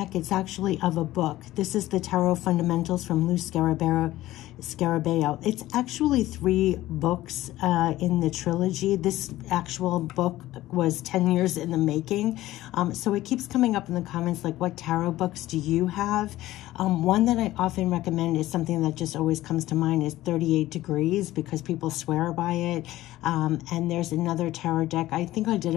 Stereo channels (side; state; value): right; quieter; 15.7 dB